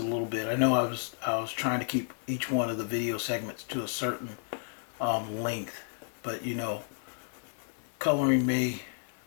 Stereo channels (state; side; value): silent; right; 57 dB below the other